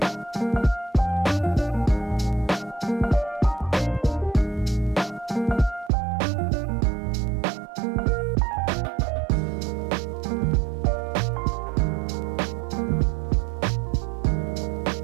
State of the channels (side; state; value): left; drops out; at 5.9 s